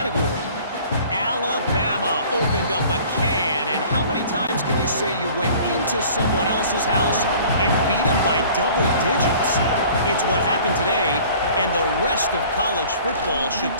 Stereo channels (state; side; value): inverted; both; correlation -0.49